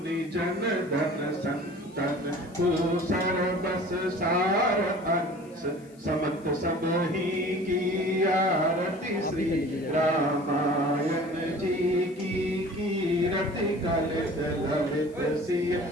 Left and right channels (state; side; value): noise; left; hiss, 29 dB below the sound